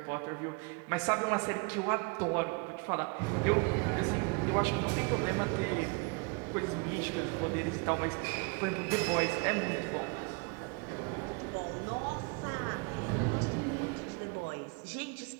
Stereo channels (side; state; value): left; quieter; 31.3 dB